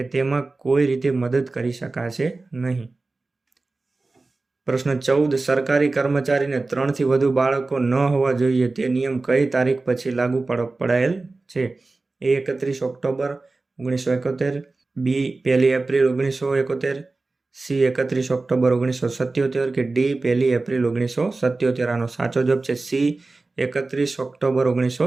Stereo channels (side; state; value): left; quieter; 3.5 dB